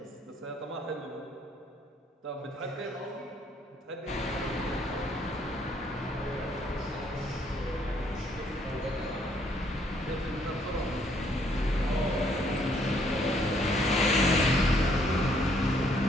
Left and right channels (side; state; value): both; normal; correlation 0.67